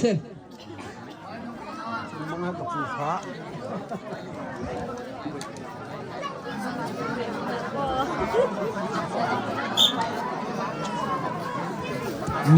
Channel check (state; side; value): identical; both; correlation 1.00